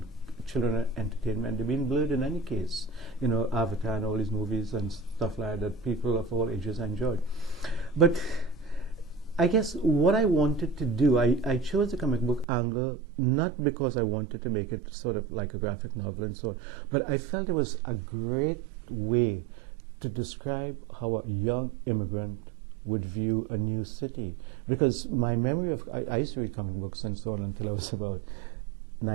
children entertainment, they've been blurred in any case. Avatar and all these movies and stuff like that people of all ages enjoyed. But I guess what I wanted to do, I chose the comic book angle not because I wanted to make it sort of like a graphic novel and so on, but I felt it was a great way to describe how a young immigrant would view a new city. Because my memory of, I used to read comic books and so on until I was about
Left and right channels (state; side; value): drops out; left; at 12.5 s